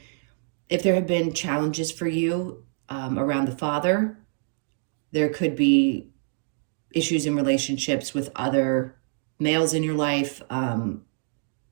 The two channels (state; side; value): silent; left; digital silence